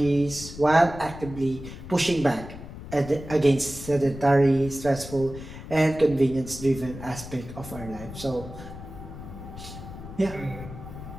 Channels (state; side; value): noise; left; rumble, 12 dB below the sound